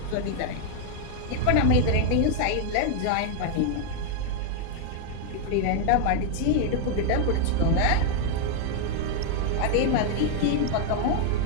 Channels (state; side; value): different; both; correlation 0.00